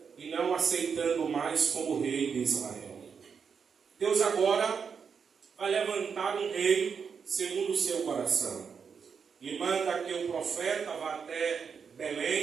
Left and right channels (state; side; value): quieter; left; 6.3 dB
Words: e não aceitando mais como rei de Israel. Deus agora vai levantar um rei segundo o seu coração e manda que o profeta vá até